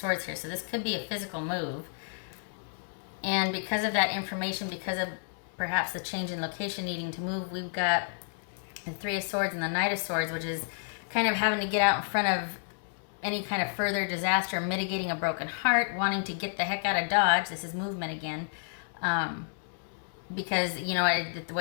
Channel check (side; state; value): right; silent; 57 dB below the other